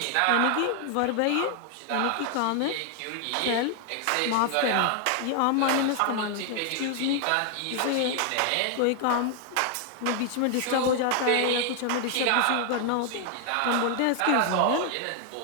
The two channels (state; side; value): different; both; correlation 0.00